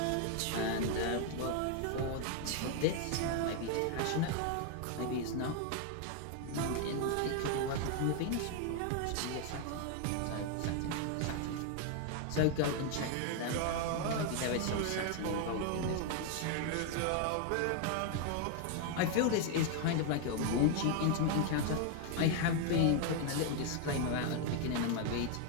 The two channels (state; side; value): different; both; correlation 0.00